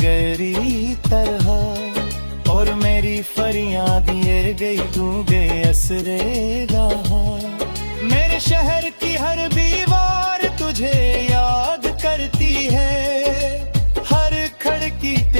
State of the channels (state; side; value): inverted; both; correlation -1.00